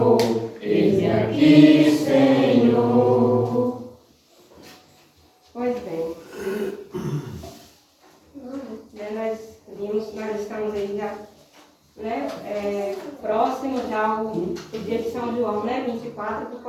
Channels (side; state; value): both; identical; correlation 1.00